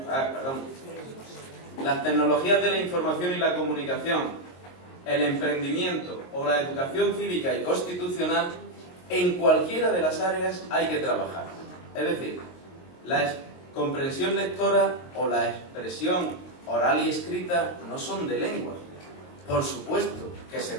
las tecnologías de la información y la comunicación, el emprendimiento o la educación cívica y constitucional, en cualquiera de las áreas hay que trabajar. Es decir, la comprensión lectora o la expresión oral y escrita no son de lengua. Por supuesto que se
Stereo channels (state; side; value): late; right; 22 ms